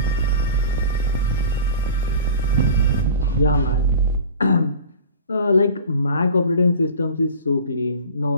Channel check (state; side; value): inverted; both; correlation -0.38